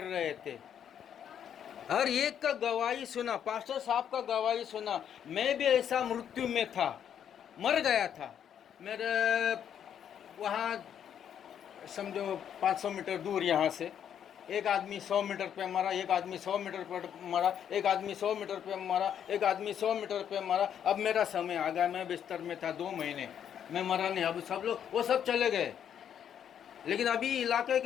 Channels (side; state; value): right; quieter; 9.0 dB